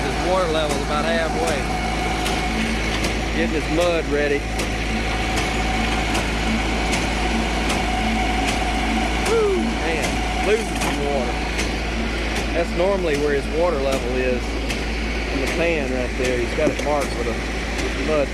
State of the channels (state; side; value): identical; both; correlation 1.00